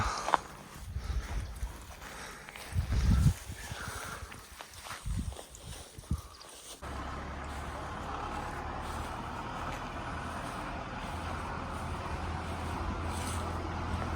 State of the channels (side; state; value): both; identical; correlation 1.00